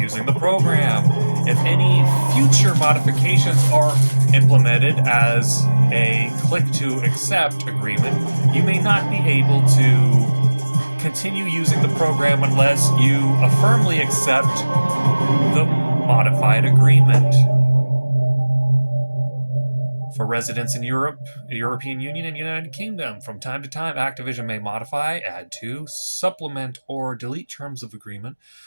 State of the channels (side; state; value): both; inverted; correlation -1.00